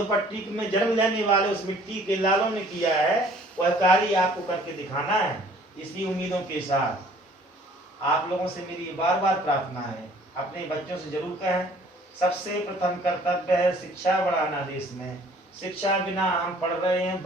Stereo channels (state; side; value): normal; both; correlation 0.55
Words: में जन्म लेने वाले उस मिट्टी के लालों ने किया है, वह कार्य आपको करके दिखाना है। इसी उम्मीदों के साथ आप लोगों से मेरी बार बार प्रार्थना है, अपने बच्चों से जरूर कहें, सबसे प्रथम कर्तव्य है शिक्षा बढ़ाना देश में। शिक्षा बिना हम पढ़ रहे हैं